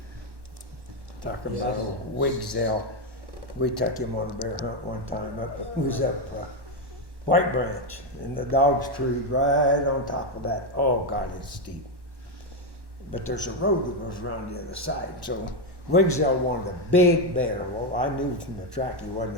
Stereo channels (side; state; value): left; late; 1.1 ms